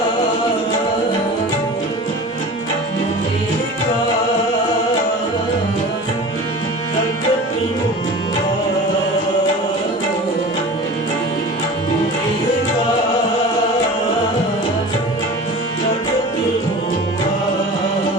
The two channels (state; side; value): normal; both; correlation 0.36